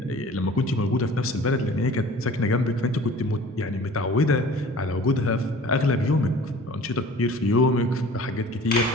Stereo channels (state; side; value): normal; both; correlation 0.45